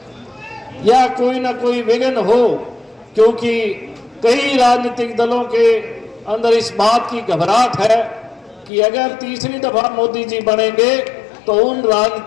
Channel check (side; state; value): right; drops out; at 8.7 s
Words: या कोई ना कोई विघ्न हो, क्योंकि कई राजनीतिक दलों के अंदर इस बात की घबराहट है कि अगर तीसरी दफा मोदी जी बनेंगे तो उन